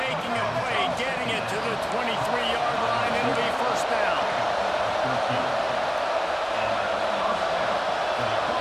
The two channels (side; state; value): both; identical; correlation 1.00